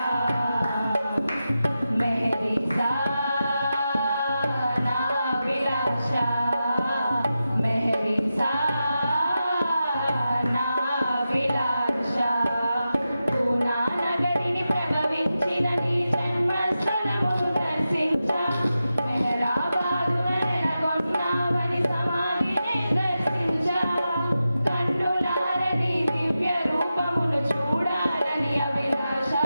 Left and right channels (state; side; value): inverted; both; correlation -0.91